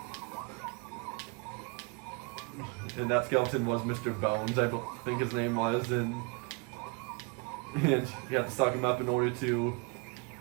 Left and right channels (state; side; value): quieter; left; 29.3 dB